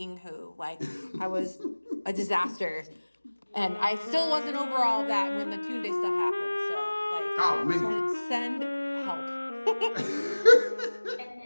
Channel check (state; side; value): inverted; both; correlation -1.00